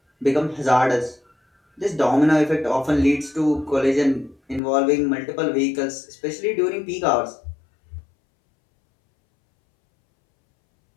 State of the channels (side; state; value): right; drops out; at 4.6 s